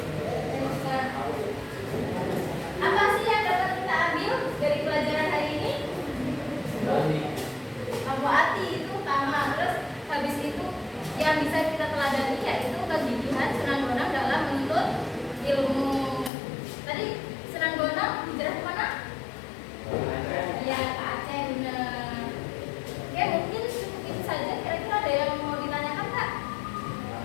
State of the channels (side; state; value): right; drops out; at 16.3 s